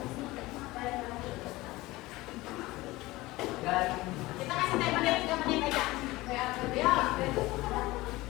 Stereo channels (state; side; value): quieter; right; 19.6 dB